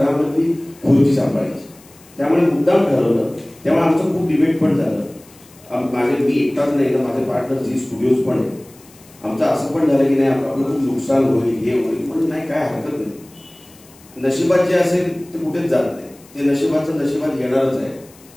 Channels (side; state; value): left; noise; hiss, 25 dB below the sound